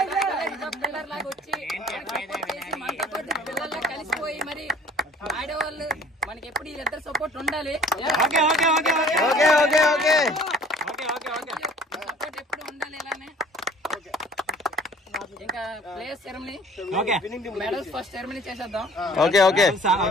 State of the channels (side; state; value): both; normal; correlation 0.52